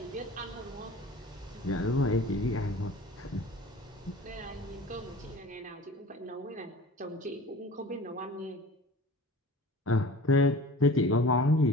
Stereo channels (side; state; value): both; normal; correlation 0.41